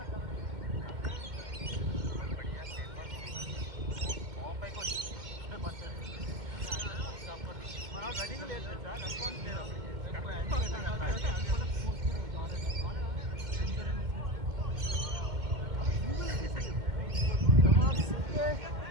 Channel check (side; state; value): left; late; 2.1 ms